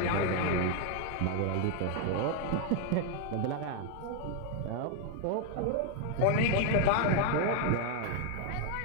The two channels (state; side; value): different; both; correlation 0.00